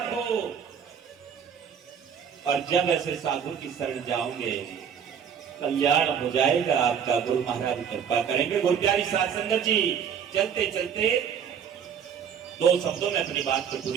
हो। और जब ऐसे साधु की शरण जाओगे, कल्याण हो जाएगा आपका। गुरु महाराज कृपा करेंगे। गुरु प्यारी साध संगत जी, चलते चलते 2 शब्दों में अपनी बात को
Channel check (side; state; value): left; quieter; 7.7 dB